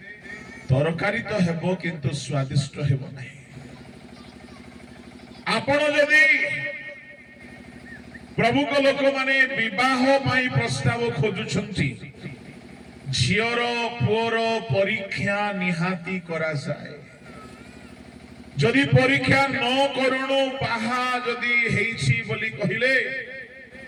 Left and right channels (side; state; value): both; identical; correlation 1.00